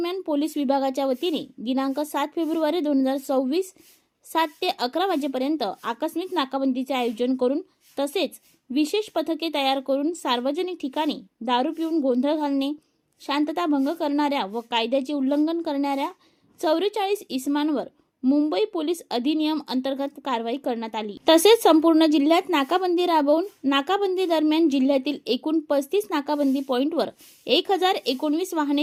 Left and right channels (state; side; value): identical; both; correlation 1.00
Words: पोलीस विभागाच्या वतीने दिनांक 7 फेब्रुवारी 2024 7 ते 11 वाजेपर्यंत आकस्मिक नाकाबंदीचे आयोजन करून तसेच विशेष पथके तयार करून सार्वजनिक ठिकाणी दारू पिऊन गोंधळ घालणे, शांतता भंग करणाऱ्या व कायद्याचे उल्लंघन करणाऱ्या 44 इसमांवर मुंबई पोलीस अधिनियम अंतर्गत कारवाई करण्यात आली। तसेच संपूर्ण जिल्ह्यात नाकाबंदी राबवून नाकाबंदी दरम्यान जिल्ह्यातील एकूण 35 नाकाबंदी पॉइंटवर 1019